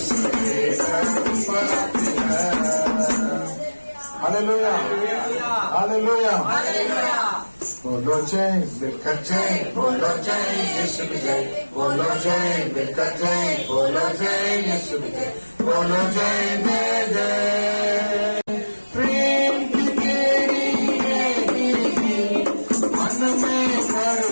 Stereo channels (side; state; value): both; inverted; correlation -1.00